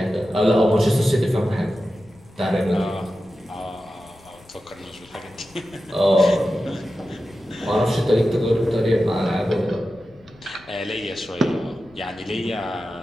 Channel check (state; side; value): noise; left; rumble, 26 dB below the sound